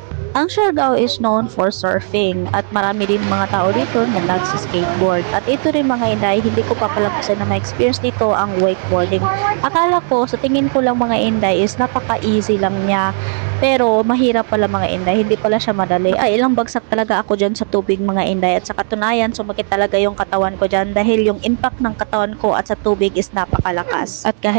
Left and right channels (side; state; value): left; silent; 55 dB below the other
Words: Ang Siargao is known for surfing at marami din mga tao dito na nagsi-skateboard. At ito rin mga Inday, hindi ko papalampasan na ma-experience dito ang wakeboarding. Akala ko, sa tingin ko lang mga Inday is napaka-easy lang niya. Pero mahirap pala mga Inday, hindi pala siya madali. Ay, ilang bagsak talaga ako dyan sa tubig mga Inday. At sa katunayan, sumakit talaga yung katawan ko dyan dahil yung impact ng katawan ko at sa tubig is napakalakas. At